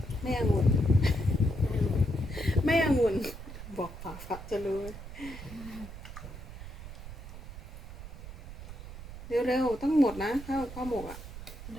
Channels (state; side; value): noise; right; rumble, 12 dB below the sound